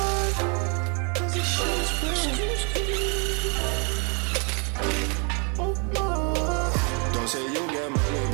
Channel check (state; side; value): quieter; left; 36.2 dB